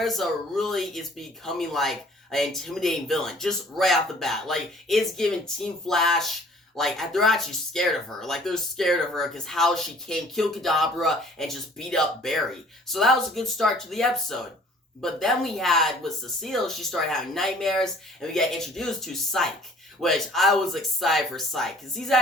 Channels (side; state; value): both; normal; correlation 0.53